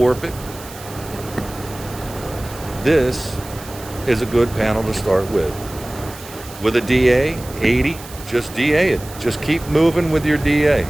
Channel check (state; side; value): noise; right; hiss, 17 dB below the sound